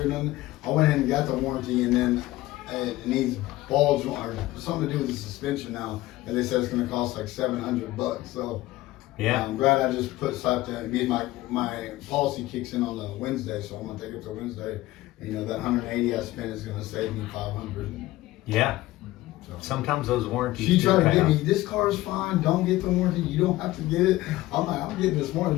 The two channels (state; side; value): quieter; right; 17.3 dB